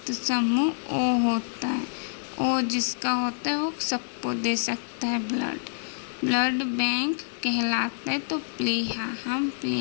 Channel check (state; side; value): silent; right; 60 dB below the other